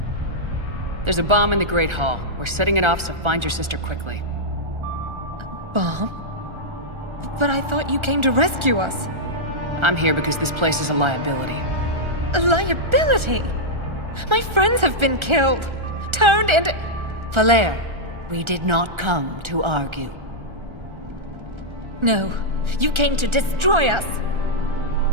There's a bomb in the Great Hall. We're setting it off, so find your sister quickly. Bomb? But I thought you came to rescue us. I'm here because this place is a liability. A liability? My friends have been killed. Turned into... Falere, we did not come to argue. No, you came to destroy us.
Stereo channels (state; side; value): late; left; 1.3 ms